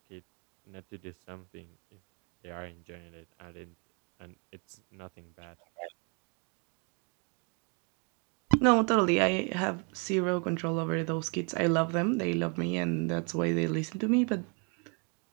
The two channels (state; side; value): quieter; left; 35.8 dB